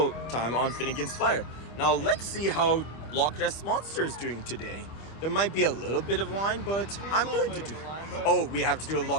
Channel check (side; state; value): right; late; 25 ms